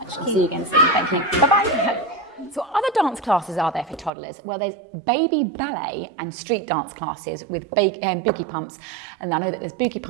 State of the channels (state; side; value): drops out; left; at 4.1 s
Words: I'll see you again soon. Thank you. Bye-bye. So what other dance classes are there for toddlers? Well, there's baby ballet and street dance classes with boogie pumps. And I know that there's boogie